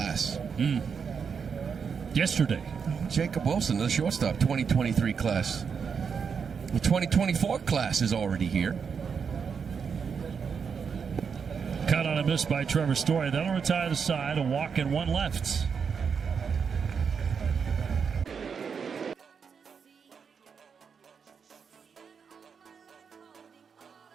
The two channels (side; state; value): left; quieter; 6.3 dB